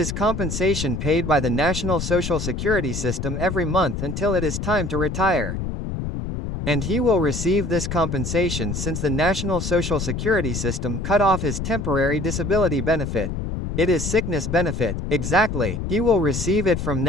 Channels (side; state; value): left; noise; rumble, 4 dB below the sound